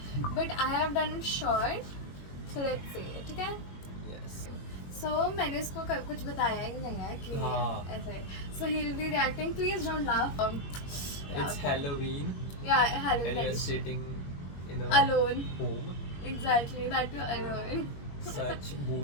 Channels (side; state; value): right; late; 21 ms